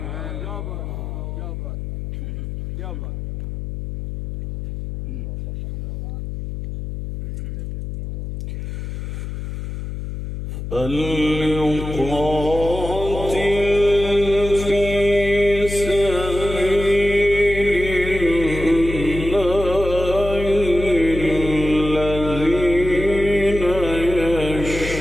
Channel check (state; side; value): noise; left; hum, 6 dB below the sound